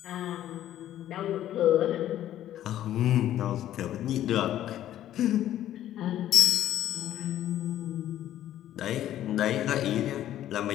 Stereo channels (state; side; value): quieter; right; 12.4 dB